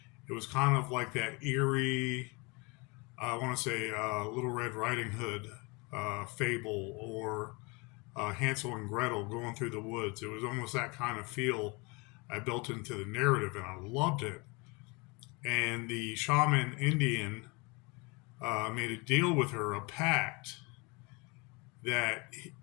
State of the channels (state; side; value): quieter; right; 28.3 dB